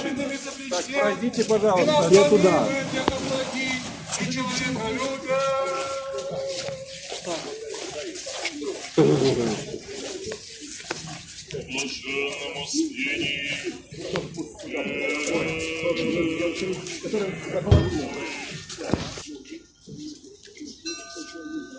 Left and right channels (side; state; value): both; identical; correlation 1.00